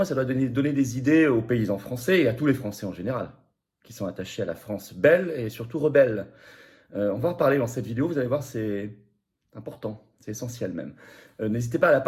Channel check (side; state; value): both; identical; correlation 1.00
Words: ça doit donner des idées aux paysans français et à tous les Français en général, qui sont attachés à la France belle et surtout rebelle. On va en parler dans cette vidéo, vous allez voir, c'est important, c'est essentiel même. N'hésitez pas à la